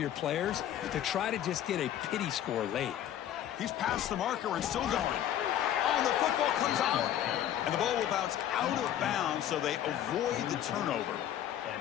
players to try to just get a pity score late. He's past the marker and still going. Oh, the football comes out. And the ball will bounce out of bounds, so they avoid the turnover.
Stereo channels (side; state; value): right; quieter; 11.2 dB